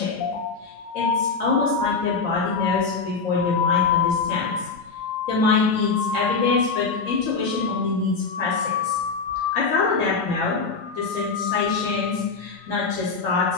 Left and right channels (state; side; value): quieter; right; 4.8 dB